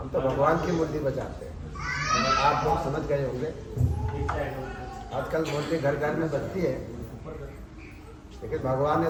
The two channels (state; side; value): identical; both; correlation 1.00